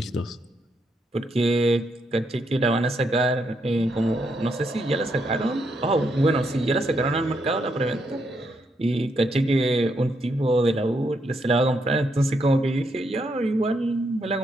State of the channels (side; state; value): both; normal; correlation 0.78